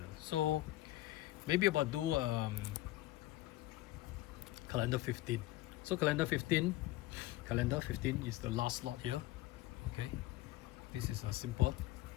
So maybe about do calendar 15. So calendar 15 is the last slot here. Okay, this is a simple.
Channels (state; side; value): quieter; right; 17.2 dB